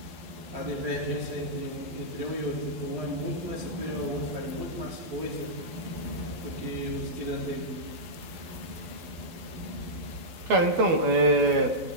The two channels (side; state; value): left; late; 12 ms